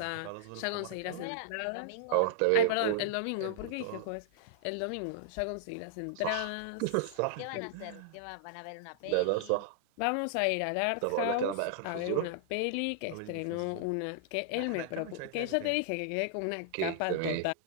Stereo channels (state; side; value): different; both; correlation -0.01